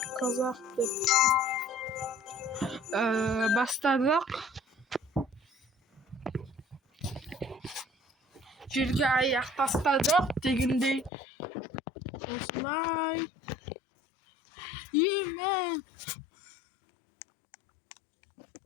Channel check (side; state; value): right; drops out; at 11.1 s